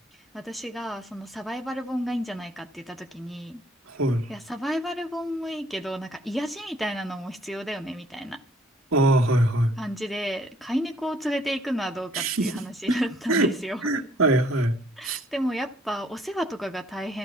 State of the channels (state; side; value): normal; both; correlation 0.62